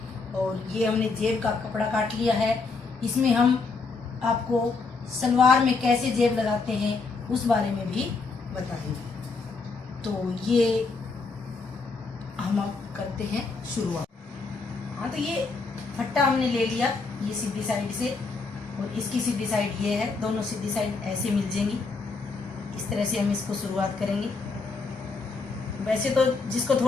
और ये हमने जेब का कपड़ा काट लिया है। इसमें हम आपको सलवार में कैसे जेब लगाते हैं उस बारे में भी बताएंगे। तो ये हम अब करते हैं शुरुआत। हाँ तो ये फट्टा हमने ले लिया, ये सीधी साइड से, और इसकी सीधी साइड ये है। दोनों सीधी साइड ऐसे मिल जाएंगी। इस तरह से हम इसको शुरुआत करेंगे। वैसे तो जिसको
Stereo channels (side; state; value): right; quieter; 4.2 dB